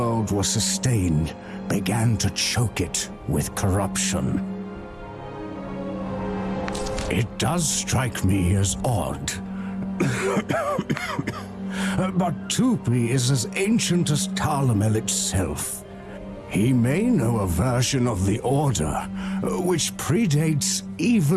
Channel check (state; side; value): identical; both; correlation 1.00